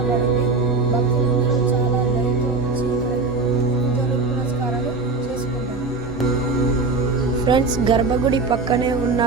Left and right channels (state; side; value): quieter; left; 3.9 dB